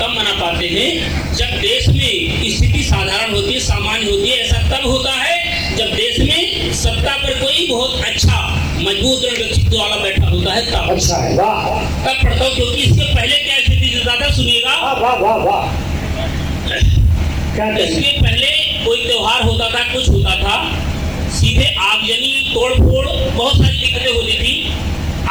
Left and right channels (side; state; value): left; noise; hiss, 25 dB below the sound